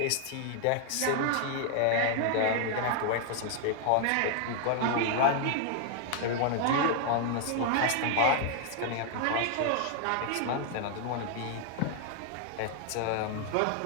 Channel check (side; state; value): both; different; correlation 0.00